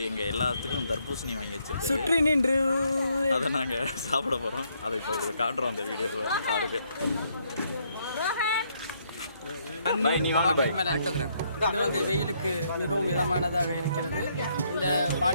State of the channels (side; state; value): both; inverted; correlation -0.72